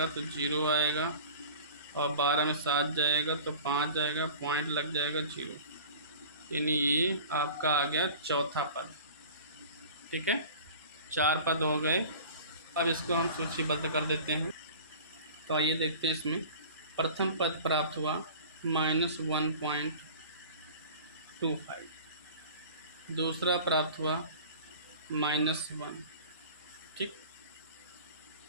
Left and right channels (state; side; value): inverted; both; correlation -0.41